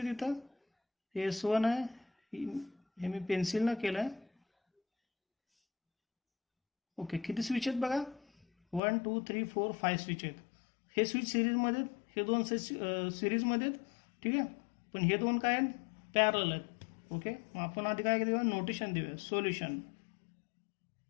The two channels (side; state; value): right; drops out; at 8.8 s